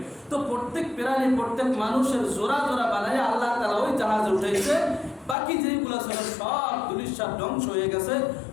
তো প্রত্যেক প্রাণী, প্রত্যেক মানুষের জোড়া জোড়া বানাই আল্লাহ তাআলা ওই জাহাজে উঠেছে। বাকি যেগুলো ছিল সব দুলিশাত ধ্বংস হয়ে গেছে।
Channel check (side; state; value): right; drops out; at 5.4 s